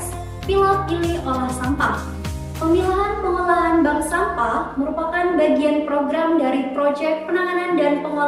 pilah pilih olah sampah. Pemilahan pengolahan bank sampah merupakan bagian program dari proyek penanganan dan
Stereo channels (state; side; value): identical; both; correlation 1.00